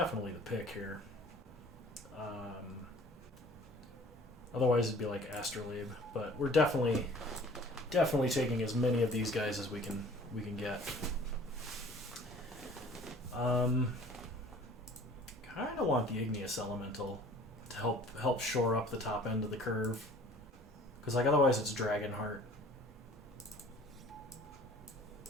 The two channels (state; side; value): normal; both; correlation 0.49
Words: the pick here. Otherwise it'd be like Astrolabe, but we're definitely taking as many of these guys as we can get. Kind of want the Igneous Elemental to help shore up the top end of the curve, because otherwise it's Dragonheart.